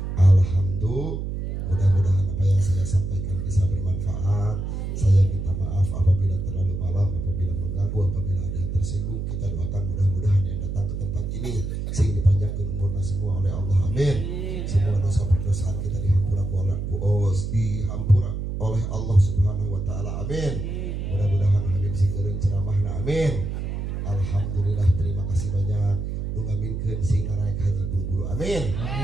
Alhamdulillah. Mudah-mudahan apa yang saya sampaikan bisa bermanfaat. Saya minta maaf apabila terlalu malam, apabila mengganggu, apabila ada yang tersinggung. Kita doakan mudah-mudahan yang datang ke tempat ini sing dipanjangkan umurnya semua oleh Allah. Amin. Semua dosa perdosaan kita dihampura oleh Allah Subhanahu wa taala. Amin. Mudah-mudahan Habib sing eureun ceramahna. Amin. Alhamdulillah, terima kasih banyak. Nu ngaminkeun sing naraek haji buru-buru. Amin.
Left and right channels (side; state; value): right; noise; hum, 4 dB below the sound